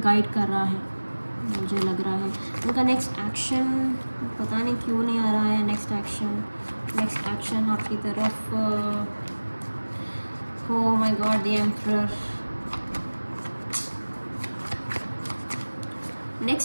गाइड कर रहा है, मुझे लग रहा है. उनका नेक्स्ट एक्शन पता नहीं क्यों नहीं आ रहा है. नेक्स्ट एक्शन आपकी तरफ. Oh my god, the emperor.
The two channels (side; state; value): both; inverted; correlation -1.00